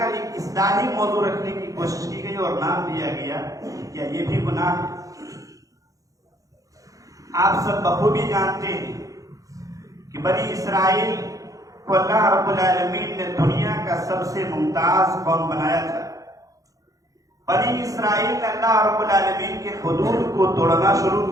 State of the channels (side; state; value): left; late; 0.17 ms